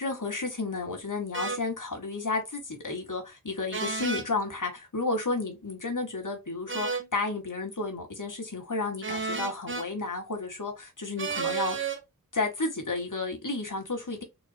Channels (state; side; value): normal; both; correlation -0.13